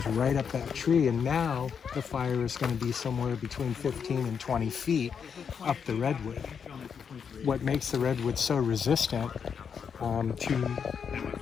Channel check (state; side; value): quieter; right; 6.8 dB